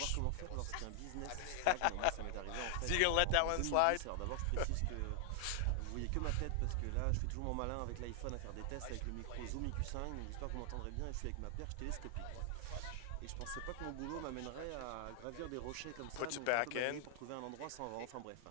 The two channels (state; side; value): different; both; correlation 0.00